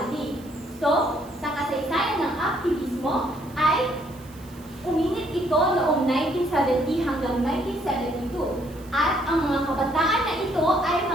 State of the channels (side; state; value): right; noise; hiss, 24 dB below the sound